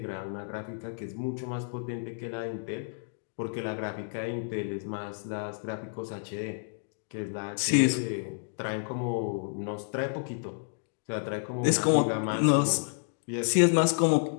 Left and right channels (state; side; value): silent; right; digital silence